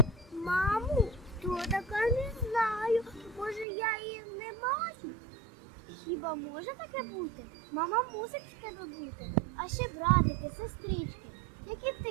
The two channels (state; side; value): drops out; left; at 3.7 s